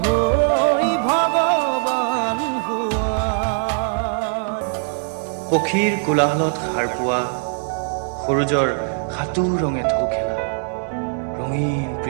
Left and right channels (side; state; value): left; silent; 63 dB below the other